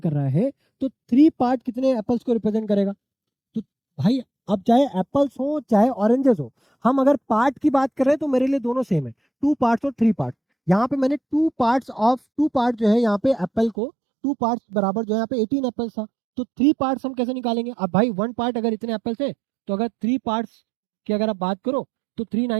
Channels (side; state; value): left; drops out; at 13.8 s